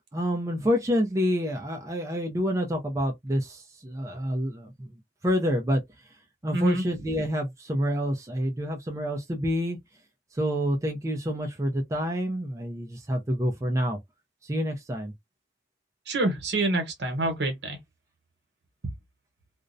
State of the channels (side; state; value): both; normal; correlation 0.72